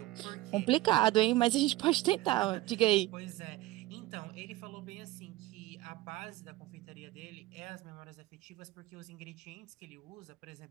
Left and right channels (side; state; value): left; quieter; 17.7 dB